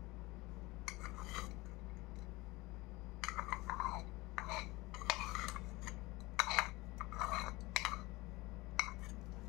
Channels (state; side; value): quieter; right; 21.7 dB